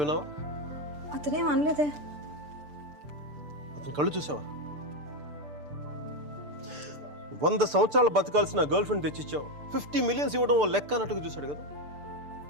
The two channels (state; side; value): late; left; 6.8 ms